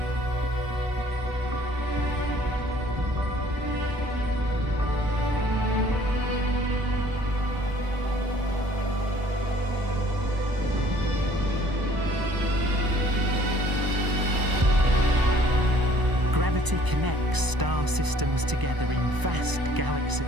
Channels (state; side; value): late; left; 1.0 ms